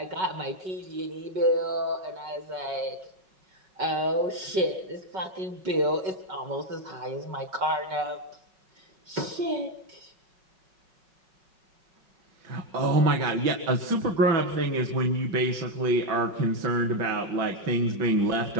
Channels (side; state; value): left; late; 5.4 ms